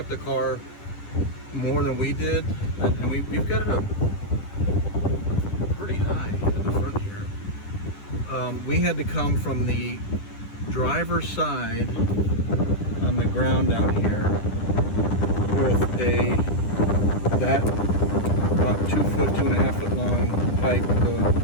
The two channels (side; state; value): right; late; 10 ms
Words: the car more than we did, and we've got it up pretty high at the front here. We had to come from the driver's side on the ground down here with that about 2 foot, 2.5 foot long pipe